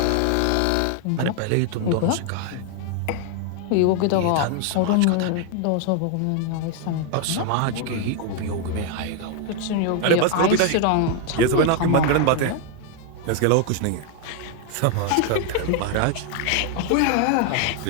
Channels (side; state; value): both; different; correlation 0.00